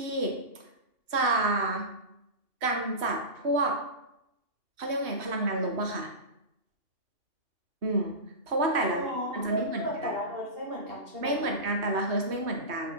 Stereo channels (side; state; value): left; late; 3.1 ms